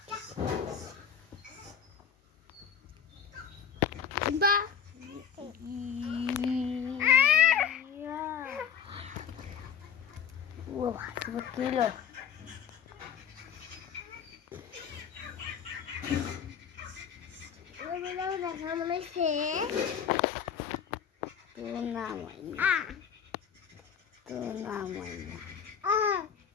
বা ও কিলো দেখা মনে হচ্ছে তোর নাম হয় না তোর নাম হয় না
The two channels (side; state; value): right; quieter; 7.7 dB